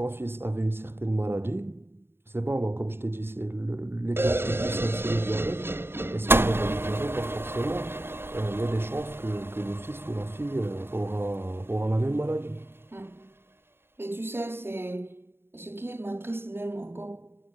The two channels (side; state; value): left; late; 0.11 ms